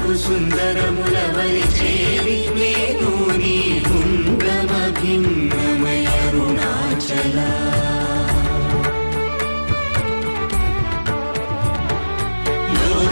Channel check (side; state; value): both; inverted; correlation -1.00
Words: సుందరముల వలి చేరి నేను నీ గుండమ భిన్నమయ అరుణాచల